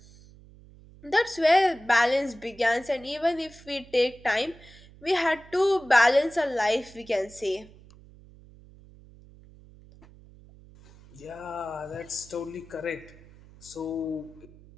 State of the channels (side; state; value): right; noise; hum, 23 dB below the sound